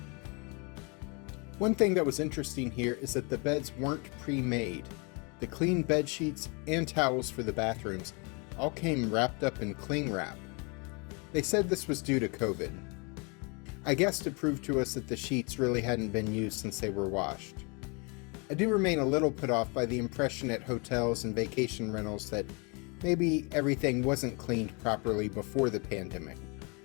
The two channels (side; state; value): right; quieter; 32.1 dB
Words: One thing that was interesting here is that the beds weren't pre-made. The clean bed sheets and towels for the bathrooms all came wrapped up in cling wrap. They said this was due to COVID. I guess to prove to us that the sheets really hadn't been used since they were washed. I do remain a little put off by the impression at hotels and vacation rentals that maybe everything wasn't cleaned properly before the pandemic.